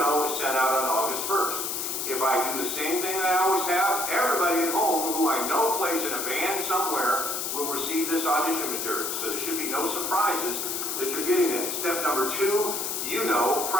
is sent out on August 1st. If I do the same thing that I always have, everybody at home who I know plays in a band somewhere will receive this audition material. So there should be no surprises that you're getting it. Step number two,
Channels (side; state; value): left; noise; hiss, 2 dB below the sound